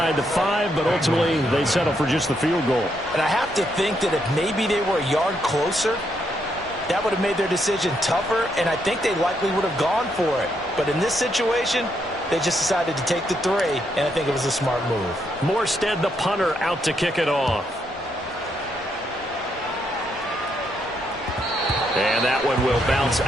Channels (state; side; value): normal; both; correlation 0.77